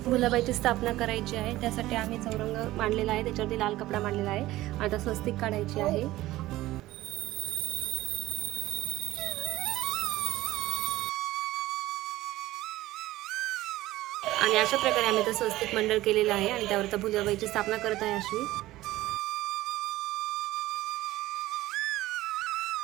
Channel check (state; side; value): quieter; left; 16.7 dB